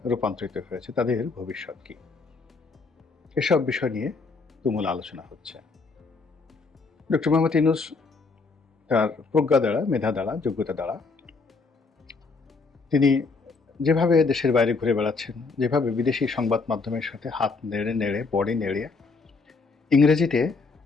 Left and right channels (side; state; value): right; quieter; 4.2 dB